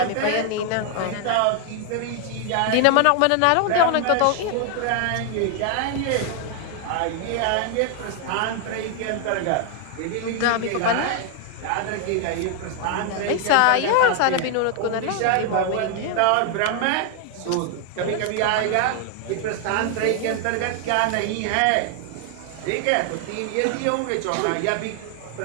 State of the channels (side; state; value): both; different; correlation 0.00